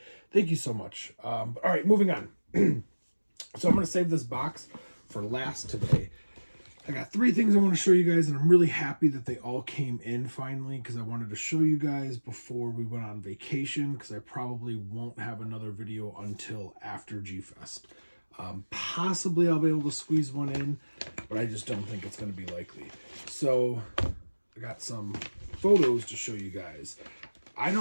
Thank you so much. All right, moving on. So I'm going to save this box for last today. I got 3 things I want to show you guys, and I'm really happy that they all came in finally because I wanted to show you guys before we went on vacation because I probably won't have another video until after G-Fest. Possibly I'll be able to squeeze one in, but I just don't think it's going to be likely. So I got some photos to show you guys. I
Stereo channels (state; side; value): inverted; both; correlation -1.00